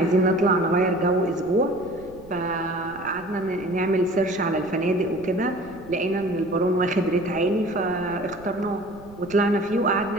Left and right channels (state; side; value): noise; right; rumble, 22 dB below the sound